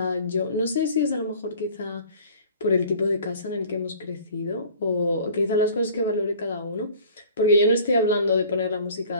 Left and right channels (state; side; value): inverted; both; correlation -0.47